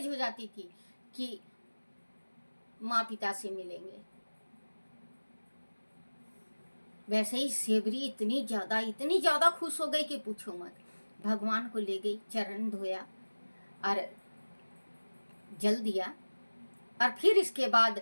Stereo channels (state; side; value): inverted; both; correlation -1.00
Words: हो जाती थी कि माँ पिता से मिलेंगे। वैसे ही सेवरी इतनी ज़्यादा खुश हो गई कि पूछो मत। भगवान को ले गई, चरण धोया और जल दिया, और फिर इसके बाद